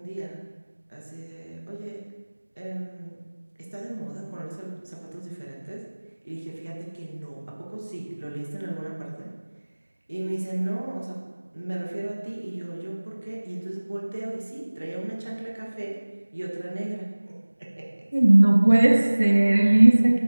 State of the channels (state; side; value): inverted; both; correlation -1.00